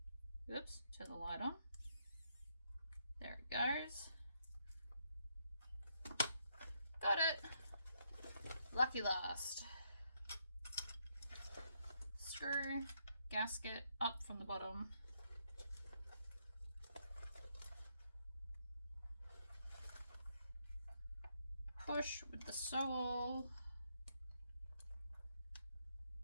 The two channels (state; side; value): inverted; both; correlation -0.75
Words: Oops, turn the light on. There it goes. Got it. Lucky last. Screw, gasket up from the bottom. Push with the sewall.